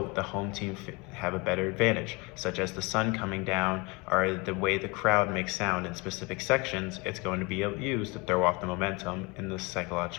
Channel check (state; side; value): quieter; right; 27.1 dB